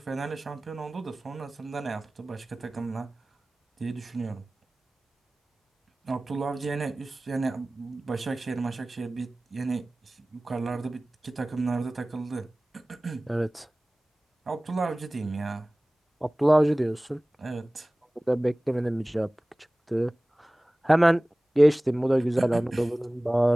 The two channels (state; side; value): normal; both; correlation 0.98